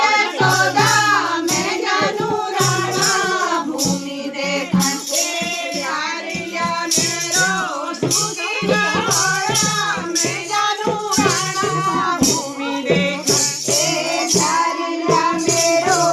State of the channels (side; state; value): both; identical; correlation 1.00